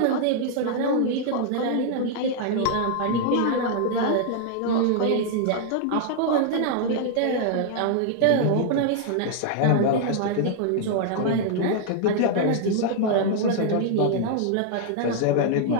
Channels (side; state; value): both; different; correlation 0.00